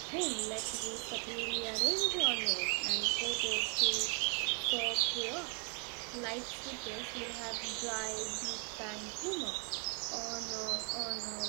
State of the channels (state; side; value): quieter; left; 35.1 dB